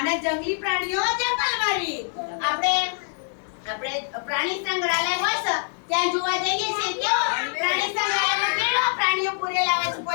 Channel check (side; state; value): right; silent; 58 dB below the other